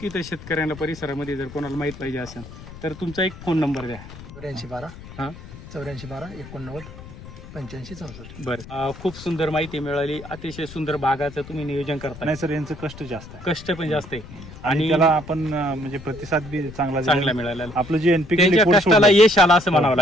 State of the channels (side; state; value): left; noise; rumble, 15 dB below the sound